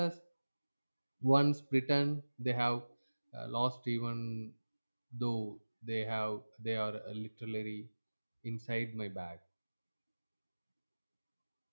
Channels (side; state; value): both; inverted; correlation -1.00